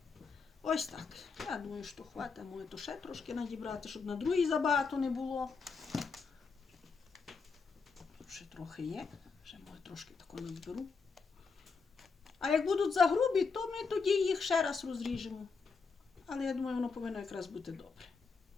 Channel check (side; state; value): right; quieter; 4.9 dB